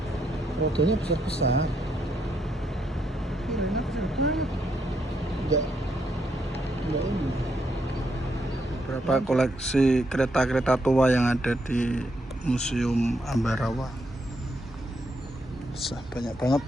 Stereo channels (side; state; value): both; normal; correlation 0.77